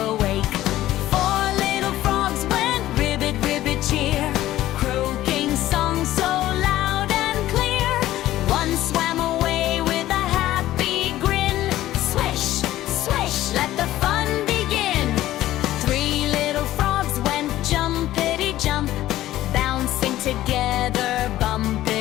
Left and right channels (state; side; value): quieter; right; 14.6 dB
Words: wake. Four little frogs went ribbit, ribbit, cheer, croaking songs so loud and clear. One swam away with a happy grin. Swish, swish, let the fun begin. Three little frogs went jumpity jump, bouncing together,